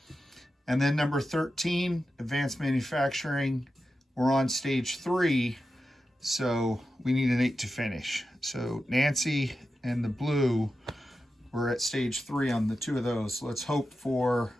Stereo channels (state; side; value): normal; both; correlation 0.91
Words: And then number 13, advanced manufacturing. We're on stage 3, so we need an 8 to finish. So Nancy and the blue, we're at stage 3 on the 2 of those. So let's hope for